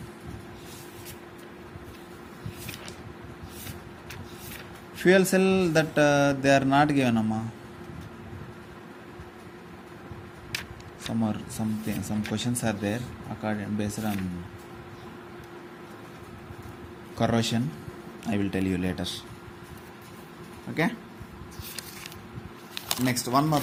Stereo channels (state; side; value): identical; both; correlation 1.00